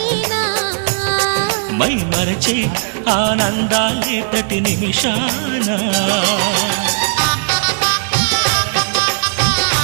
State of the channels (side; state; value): left; silent; digital silence